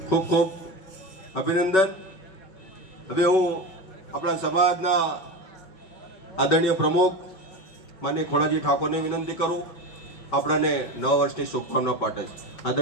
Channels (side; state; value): right; late; 5.3 ms